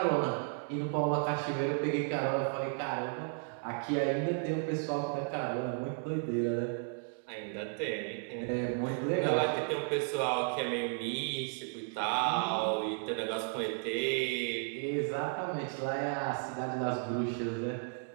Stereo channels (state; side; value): silent; left; 55 dB below the other